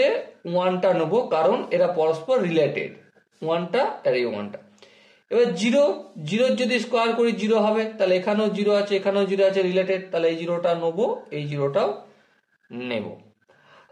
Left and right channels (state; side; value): identical; both; correlation 1.00